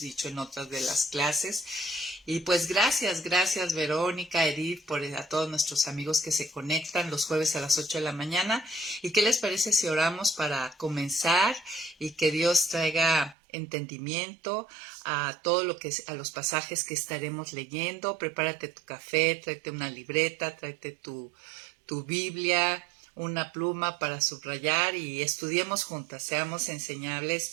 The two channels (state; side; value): drops out; left; at 13.4 s